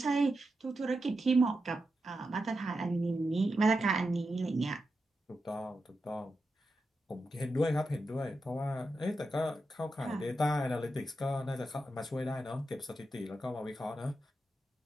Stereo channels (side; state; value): both; normal; correlation 0.88